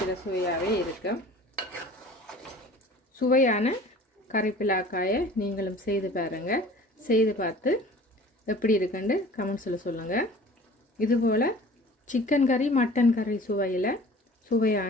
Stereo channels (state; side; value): normal; both; correlation 0.45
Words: சுவையாகவே இருக்கும். சுவையான கறி பிலாக்காயை நீங்களும் செய்து பாருங்கள். செய்து பார்த்து எப்படி இருக்குன்னு கமெண்ட்ஸில் சொல்லுங்கள். இதுபோல் சிக்கன் கறி மட்டன் கறி சுவையில்